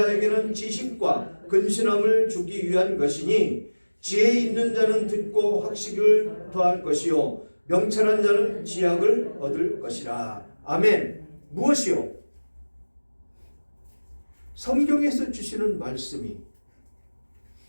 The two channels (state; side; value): inverted; both; correlation -1.00